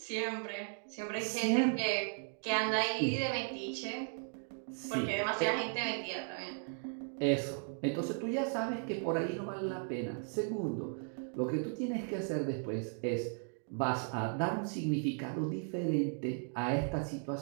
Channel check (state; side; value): silent; left; 54 dB below the other